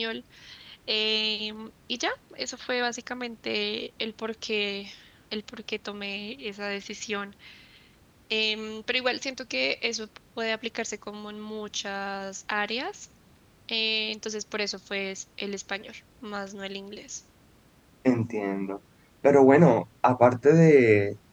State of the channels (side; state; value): both; identical; correlation 1.00